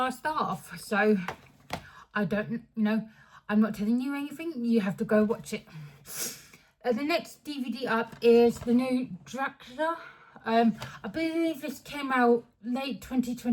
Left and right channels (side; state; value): both; identical; correlation 1.00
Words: laugh? So, I don't, I'm not telling you anything, you have to go watch it. The next DVD up is the new Dracula. I believe this came out late